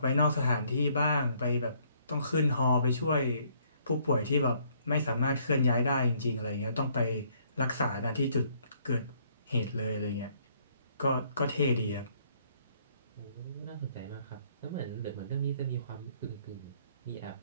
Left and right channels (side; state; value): both; inverted; correlation -0.66